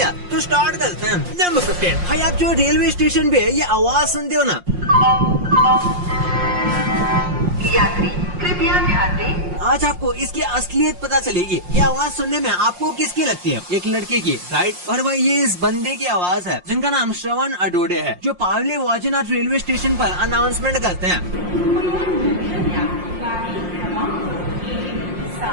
तो स्टार्ट करते हैं। नंबर 15। भाई आप जो रेलवे स्टेशन पे ये आवाज सुनते हो ना, यात्री कृपया ध्यान दें। आज आपको इसकी असलियत पता चलेगी। ये आवाज सुनने में आपको किसकी लगती है? एक लड़के की, राइट? और भाई ये इस बंदे की आवाज है जिनका नाम श्रवण अडोडे है, जो पावली वाजीनाथ रेलवे स्टेशन पर अनाउंसमेंट करते हैं।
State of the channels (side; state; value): left; late; 5.6 ms